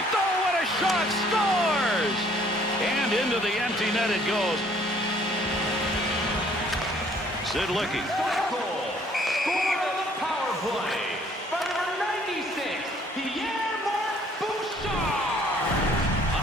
Oh, what a shot! Scores! And into the empty net it goes. Sid Licky. Scored on the power play by number 96, Pierre-Marc Bouchard.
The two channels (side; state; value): both; normal; correlation 0.60